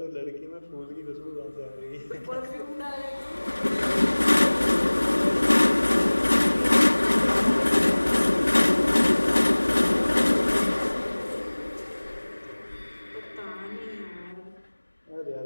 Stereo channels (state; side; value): inverted; both; correlation -1.00